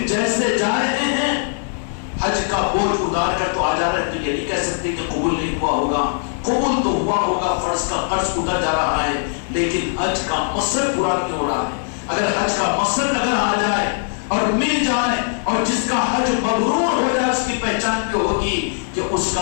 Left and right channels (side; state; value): right; silent; 66 dB below the other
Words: جیسے جا رہے ہیں حج کا بوجھ اتار کر تو آ جا رہے ہیں، تو یہ نہیں کہہ سکتے کہ قبول نہیں ہوا ہوگا. قبول تو ہوا ہوگا، فرض کا قرض اتر جا رہا ہے، لیکن حج کا مقصد پورا نہیں ہو رہا ہے. اگر حج کا مقصد اگر آ جائے اور مل جائے اور جس کا حج مبرور ہو جائے، اس کی پہچان یہ ہوگی کہ اس